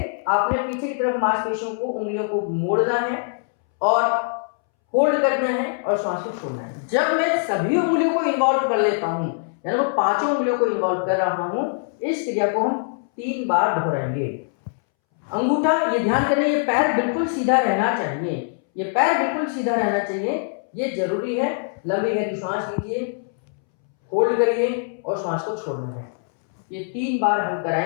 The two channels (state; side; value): silent; right; 64 dB below the other